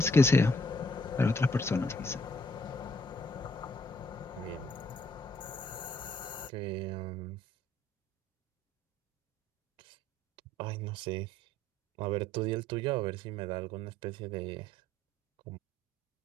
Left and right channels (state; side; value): normal; both; correlation 0.66